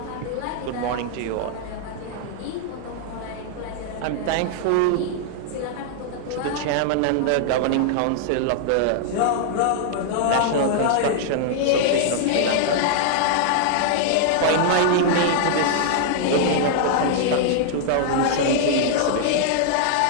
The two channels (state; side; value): different; both; correlation -0.01